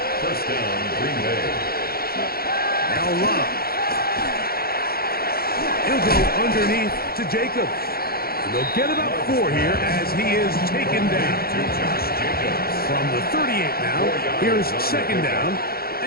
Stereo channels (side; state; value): right; late; 0.44 ms